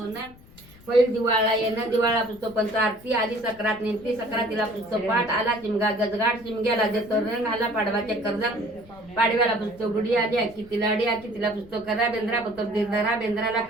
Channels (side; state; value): left; noise; rumble, 23 dB below the sound